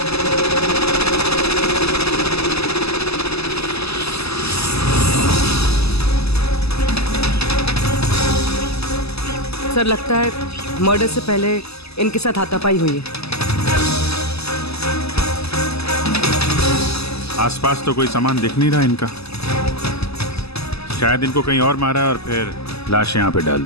सर लगता है मर्डर से पहले इनके साथ हाथापाई हुई है। आसपास तो कोई सामान दिख नहीं रहा इनका, शायद इनको कहीं और मारा और फिर लाश यहाँ पे डाल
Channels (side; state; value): right; late; 0.79 ms